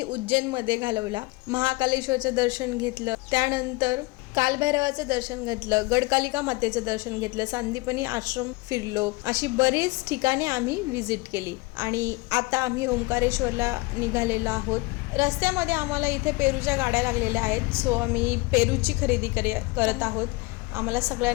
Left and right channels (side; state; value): right; quieter; 23.8 dB